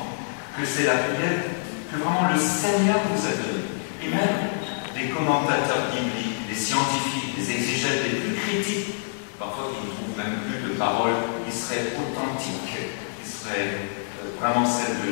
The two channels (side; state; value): right; silent; digital silence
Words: que c'est la prière que vraiment le Seigneur nous a donnée. Et même des commentateurs bibliques, des scientifiques, des exégètes les plus critiques, parfois qui ne trouvent même plus de paroles qui seraient authentiques, qui seraient vraiment celles